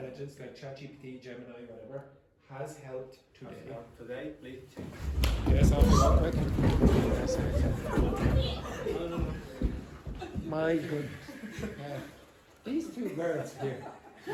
like ChatGPT, Gemini, whatever, has helped today. Today, please change. Yes, I'll be quick. Yes. My goodness. These two girls here,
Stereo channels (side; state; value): both; identical; correlation 1.00